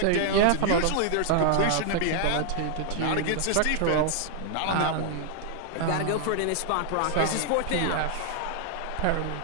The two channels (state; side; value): different; both; correlation 0.00